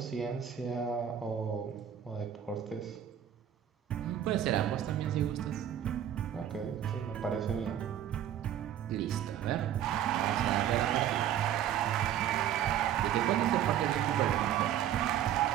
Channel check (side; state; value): left; quieter; 10.4 dB